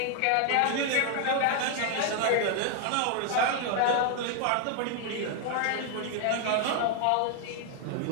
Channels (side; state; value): both; different; correlation 0.00